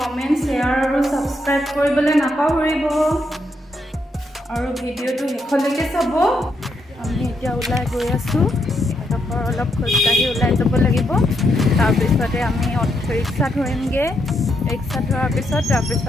শ্বেয়াৰ আৰু ছাবস্ক্ৰাইব কৰিবলৈ নাপাহৰিব আৰু ভিডিঅ'টো শেষলৈকে চাব। আমি এতিয়া ওলাই গৈ আছোঁ। এডোখৰ অলপ খোজকাঢ়ি ওলাই যাব লাগিব। তাৰপিছতে আমি ৰিক্সা ধৰিমগৈ। ৰিক্সা ধৰাৰ পিছত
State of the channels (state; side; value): normal; both; correlation 0.79